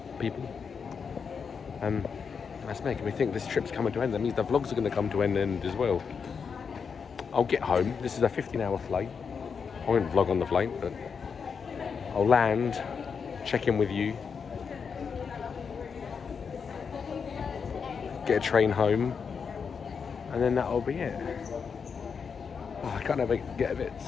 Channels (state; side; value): quieter; right; 6.1 dB